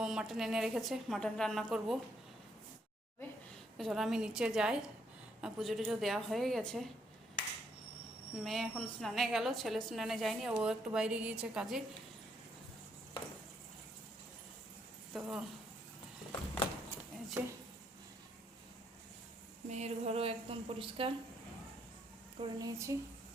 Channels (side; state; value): both; normal; correlation 0.73